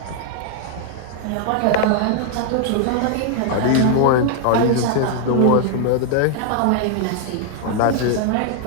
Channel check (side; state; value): both; different; correlation 0.00